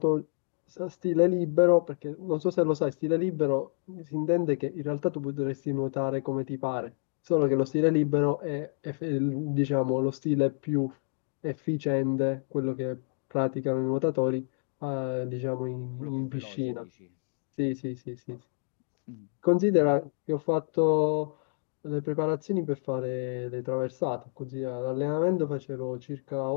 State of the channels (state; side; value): silent; right; digital silence